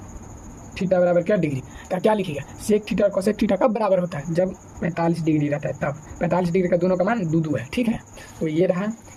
बराबर क्या डिग्री का, क्या लिखिएगा, सेक थीटा और कोसेक थीटा कब बराबर होता है, जब 45 डिग्री रहता है तब। 45 डिग्री का दोनों का मान 2 है, ठीक है। तो ये रहा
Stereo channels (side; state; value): both; identical; correlation 1.00